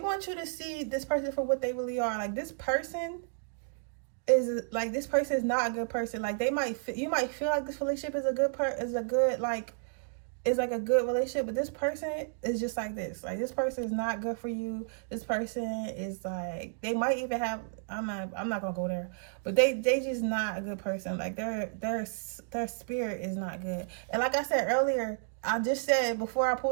you to see this person for what they really are. Like, this person is not a good person. Like, you might feel like this relationship is a good relationship, but this person is just like this. Like, this person is not good for you. This person is like, they might even have, I'm not gonna go there, but they just not a good person. Like, their spirit is not good. And like I said earlier, I just said before I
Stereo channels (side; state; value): left; silent; digital silence